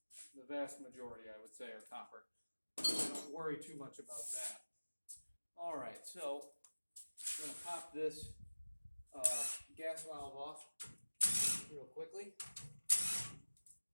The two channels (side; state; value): both; inverted; correlation -1.00